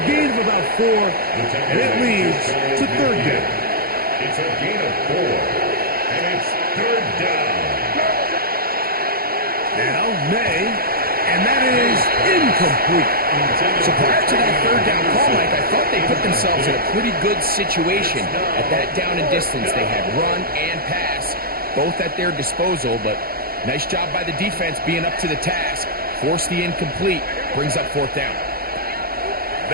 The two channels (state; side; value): late; left; 0.44 ms